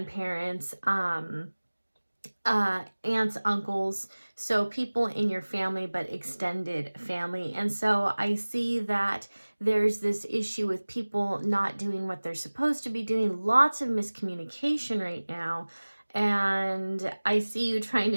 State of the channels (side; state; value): both; inverted; correlation -1.00